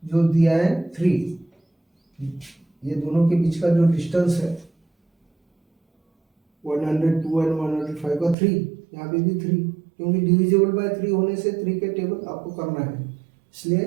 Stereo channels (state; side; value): drops out; left; at 8.3 s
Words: जो दिया है 3, ये दोनों के बीच का जो डिस्टेंस है 102 एंड 105 का 3, यहाँ पे भी 3, क्योंकि डिविजिबल बाय 3 होने से 3 के टेबल आपको करना है,